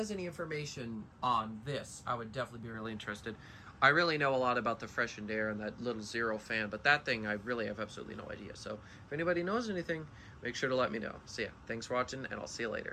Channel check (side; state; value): both; identical; correlation 1.00